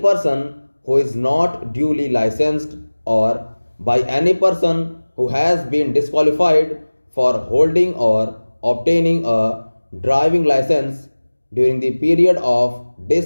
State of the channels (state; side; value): inverted; both; correlation -1.00